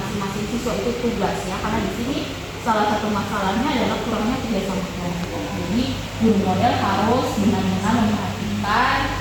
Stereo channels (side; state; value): both; identical; correlation 1.00